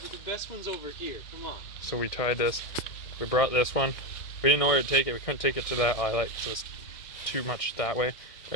the best one's over here. Come on. So we tied this. We brought this one. We didn't know where to take it. We couldn't take it to that eyelet because it was too much that way. We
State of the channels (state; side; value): late; right; 1.6 ms